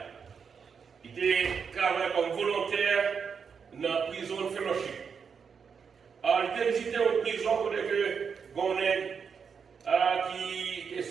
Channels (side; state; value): left; quieter; 6.3 dB